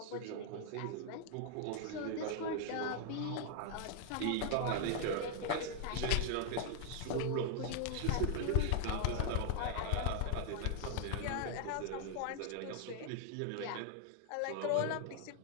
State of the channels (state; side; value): different; both; correlation 0.00